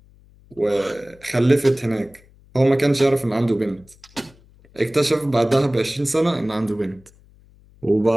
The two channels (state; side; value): noise; left; hum, 28 dB below the sound